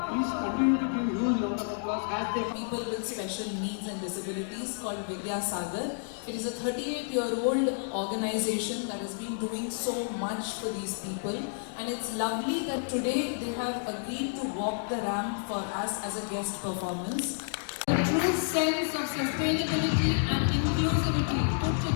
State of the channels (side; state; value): right; silent; digital silence